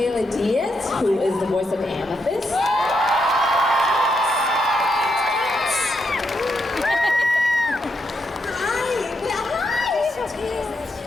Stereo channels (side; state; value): both; normal; correlation 0.81